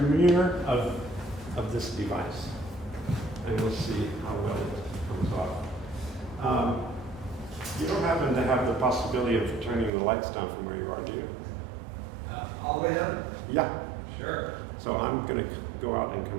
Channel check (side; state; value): left; drops out; at 9.9 s